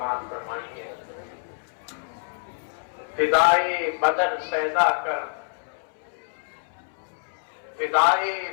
فرمائیے. فضائے بدر پیدا کر فضائے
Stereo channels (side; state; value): right; silent; 60 dB below the other